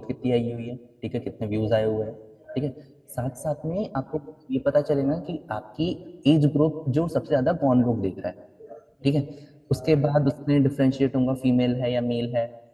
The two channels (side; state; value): both; identical; correlation 1.00